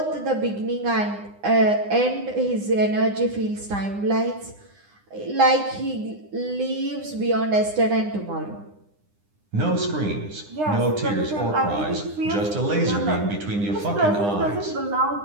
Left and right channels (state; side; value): late; left; 9.8 ms